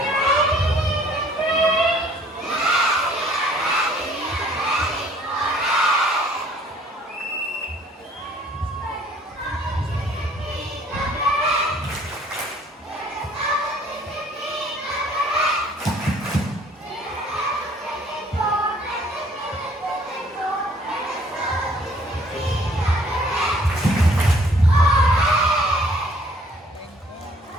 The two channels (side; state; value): both; normal; correlation 0.59